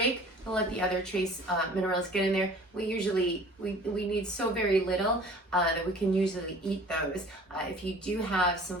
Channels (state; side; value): normal; both; correlation 0.47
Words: and let the other trace minerals get in there. We need so very little that we can usually eat those. If you do have some